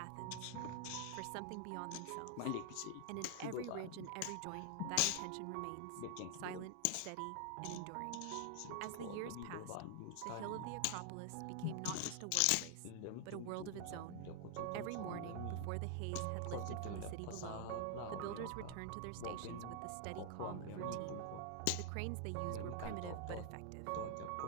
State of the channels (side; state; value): both; different; correlation 0.00